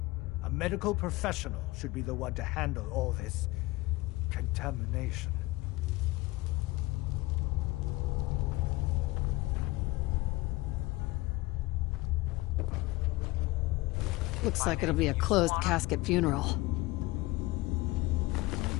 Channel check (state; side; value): quieter; right; 20.6 dB